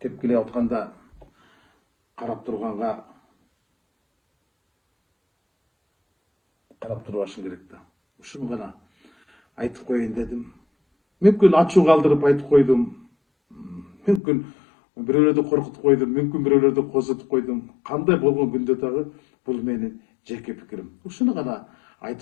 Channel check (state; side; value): drops out; right; at 14.2 s